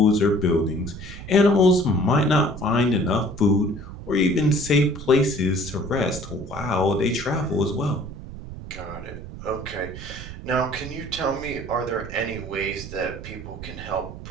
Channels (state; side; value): noise; right; rumble, 12 dB below the sound